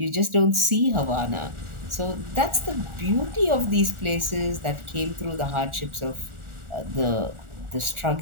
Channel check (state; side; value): late; left; 1.4 ms